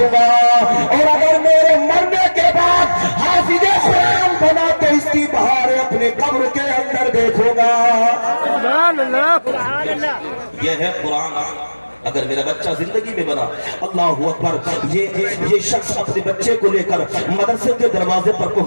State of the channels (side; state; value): both; inverted; correlation -1.00